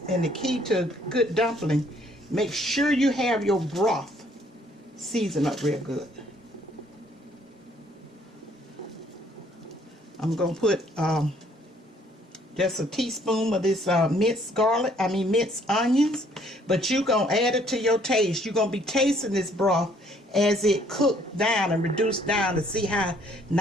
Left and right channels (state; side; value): normal; both; correlation 0.63